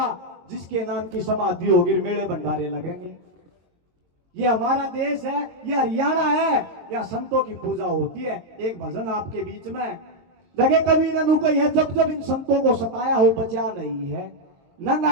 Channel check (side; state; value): left; late; 22 ms